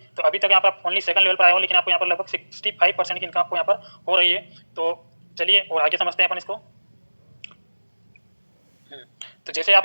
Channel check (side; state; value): both; inverted; correlation -1.00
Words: तो अभी तक यहाँ पर आप ओनली सेकंड लेवल पर आए हो, लेकिन आपको यहाँ पर लगभग 65% की इनकम आपको यहाँ पर हो रही है। तो चलिए और आगे समझते हैं अपन इसको। तो जैसे आप